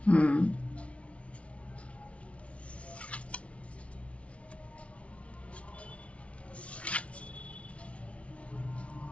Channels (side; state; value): right; late; 0.062 ms